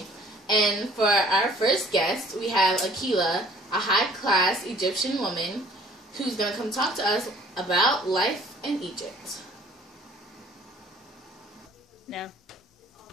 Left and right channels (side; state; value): both; normal; correlation 0.54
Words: And for our first guest, we have Ikira, a high-class Egyptian woman who's going to come talk to us about life in Egypt. No.